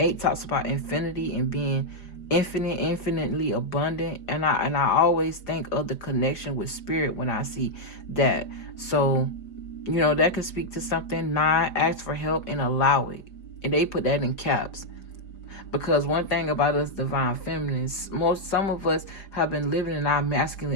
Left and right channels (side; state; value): right; late; 5.0 ms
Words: talks about infinity and being infinitely abundant. And I always think of the connection with spirit when I see that. So, that could speak to something. 9, ask for help and allow it. And they put that in caps. Because one thing about us divine feminines, some of us have been living in our masculine